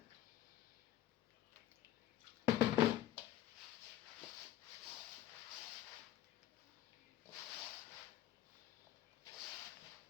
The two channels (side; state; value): right; quieter; 12.9 dB